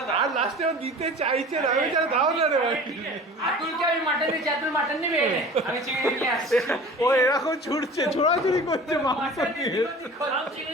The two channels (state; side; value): normal; both; correlation 0.40